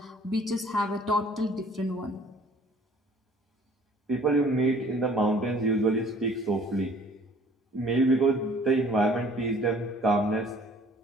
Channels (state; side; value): normal; both; correlation 0.54